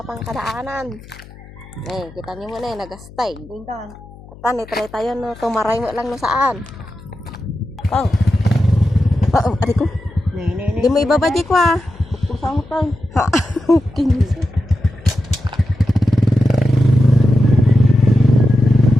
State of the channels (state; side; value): noise; left; hum, 20 dB below the sound